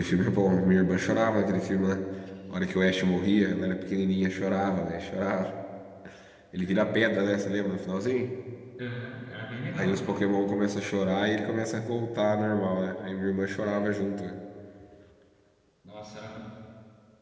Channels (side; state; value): both; identical; correlation 1.00